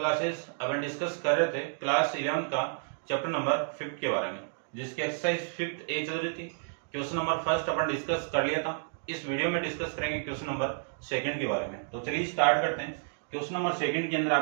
अपन डिस्कस कर रहे थे क्लास 11 का चैप्टर नंबर 5 के बारे में, जिसकी एक्सरसाइज 5 ए चल रही थी। क्वेश्चन नंबर फर्स्ट अपन डिस्कस कर लिया था। इस वीडियो में डिस्कस करेंगे क्वेश्चन नंबर सेकंड के बारे में। तो चलिए स्टार्ट करते हैं। क्वेश्चन नंबर सेकंड के अंदर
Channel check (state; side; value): silent; left; digital silence